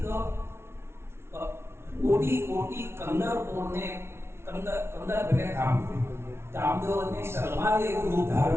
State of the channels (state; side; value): late; left; 0.12 ms